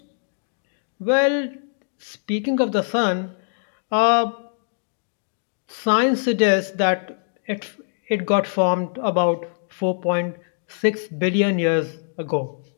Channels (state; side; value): silent; right; digital silence